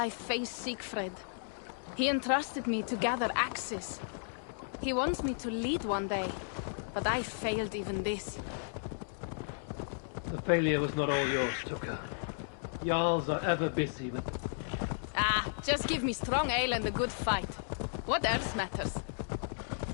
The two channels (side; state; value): right; silent; digital silence